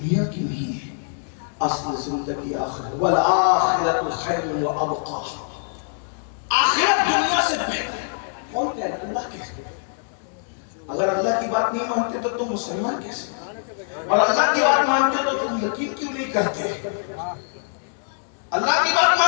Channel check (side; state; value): right; silent; digital silence